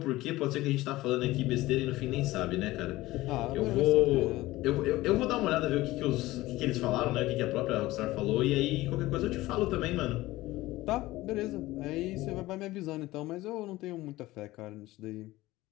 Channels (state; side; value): quieter; right; 18.1 dB